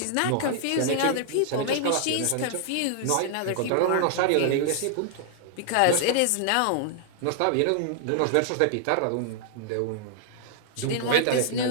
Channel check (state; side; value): different; both; correlation -0.01